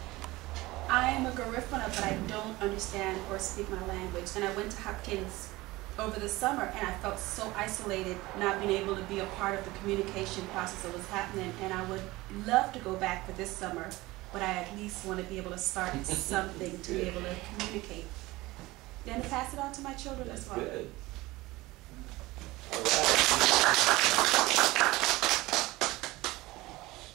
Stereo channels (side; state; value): left; quieter; 19.9 dB